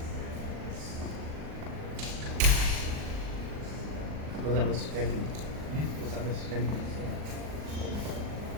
Was that Mr. Jenkins? Was that Mr. Jenkins?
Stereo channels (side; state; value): left; late; 39 ms